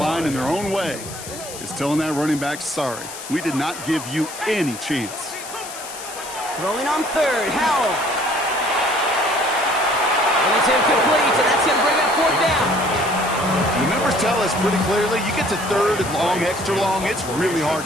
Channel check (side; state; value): left; noise; hiss, 12 dB below the sound